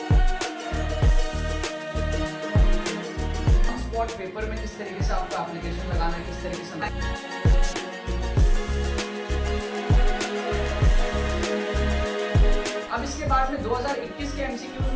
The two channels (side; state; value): both; identical; correlation 1.00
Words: स्पॉट पेपर में किस तरीके से आपको एप्लीकेशन लगाना है, किस तरीके से अब इसके बाद में 2021 के एमसीक्यूज